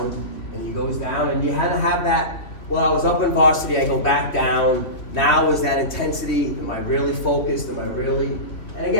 and he goes down, and you had to have that, well, I was up in varsity, I go back down, now is that intensity, am I really focused, am I really, and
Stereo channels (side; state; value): right; late; 2.9 ms